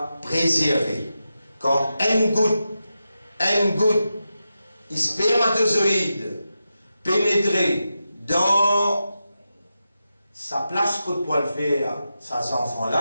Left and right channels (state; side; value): inverted; both; correlation -0.90